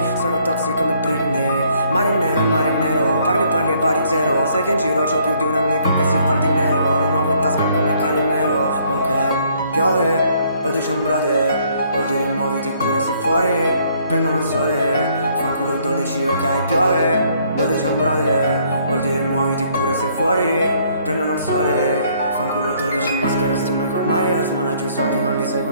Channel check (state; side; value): inverted; both; correlation -0.65